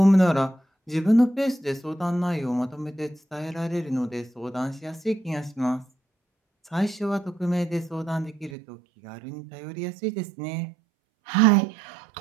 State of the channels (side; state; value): left; drops out; at 8.5 s